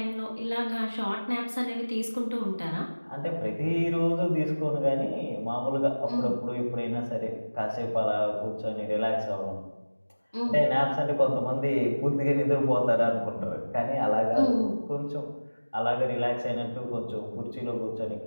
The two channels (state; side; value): inverted; both; correlation -1.00